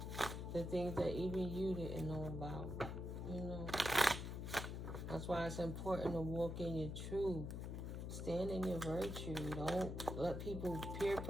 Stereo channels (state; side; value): noise; left; hum, 5 dB below the sound